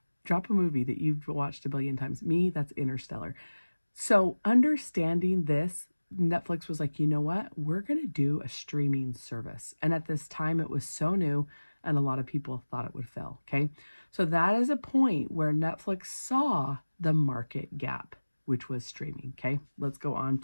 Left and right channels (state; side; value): inverted; both; correlation -1.00